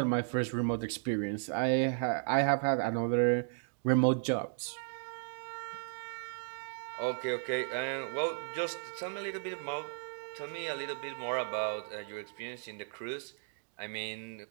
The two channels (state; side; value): silent; left; digital silence